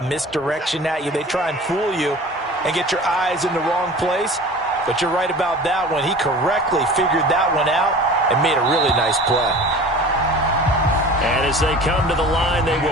misdirection at you. They try and fool you and get your eyes in the wrong place. But you're right about that one. He correctly figured that one out and made a really nice play. And as they come to the line, they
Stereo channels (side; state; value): both; normal; correlation 0.40